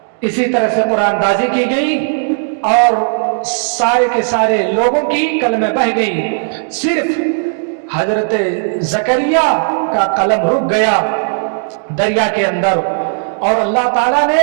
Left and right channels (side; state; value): left; silent; 70 dB below the other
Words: اسی طرح سے قرآن دازی کی گئی اور سارے کے سارے لوگوں کی قلمیں بہ گئی، صرف حضرت زکریا کا قلم رک گیا دریا کے اندر، اور اللہ تعالیٰ نے